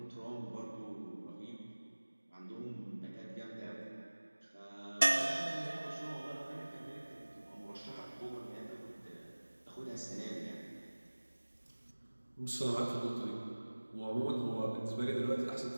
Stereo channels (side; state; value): both; inverted; correlation -1.00